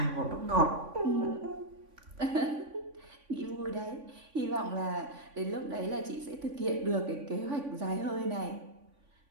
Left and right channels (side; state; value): left; late; 3.5 ms